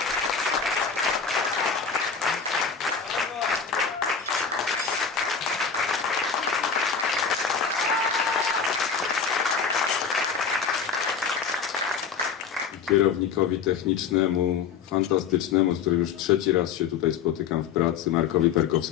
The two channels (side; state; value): right; quieter; 6.4 dB